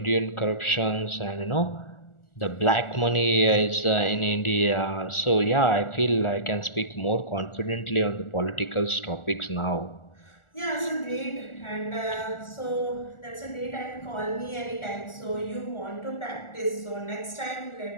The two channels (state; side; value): late; right; 1.4 ms